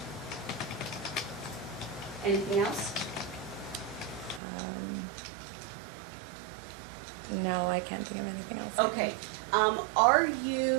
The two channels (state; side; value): drops out; left; at 4.4 s